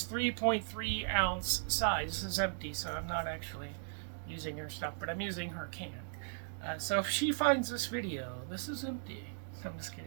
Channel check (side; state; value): left; silent; digital silence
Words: 3.3 ounce size. This is empty, so I'm not actually using her stuff, but I'm using her can. So if she finds this video, this is empty. I'm just